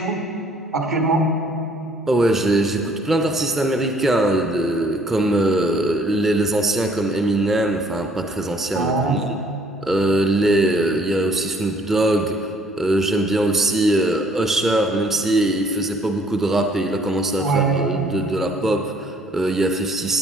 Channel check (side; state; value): both; normal; correlation 0.61